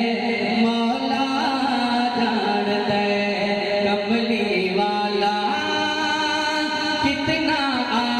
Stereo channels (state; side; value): identical; both; correlation 1.00